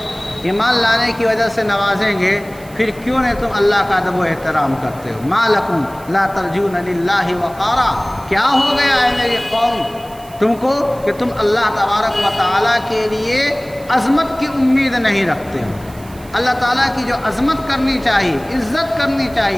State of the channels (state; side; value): noise; right; hiss, 23 dB below the sound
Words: لانے کی وجہ سے نوازیں گے، پھر کیوں نہیں تم اللہ کا ادب و احترام کرتے ہو؟ ما لکم لا ترجون للہ وقارا، کیا ہو گیا ہے میری قوم تم کو کہ تم اللہ تبارک و تعالیٰ کے لیے عظمت کی امید نہیں رکھتے ہو؟ اللہ تعالیٰ کی جو عظمت کرنی چاہیے، عزت کرنی